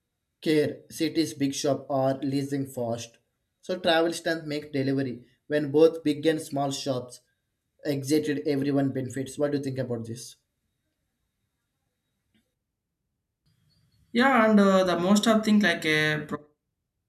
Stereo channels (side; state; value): both; identical; correlation 1.00